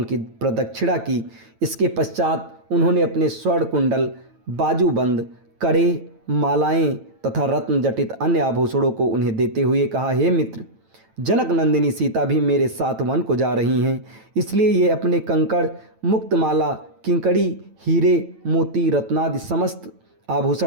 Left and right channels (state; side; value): late; left; 9.0 ms